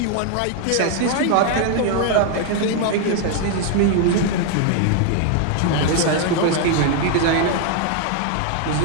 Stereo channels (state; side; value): different; both; correlation 0.00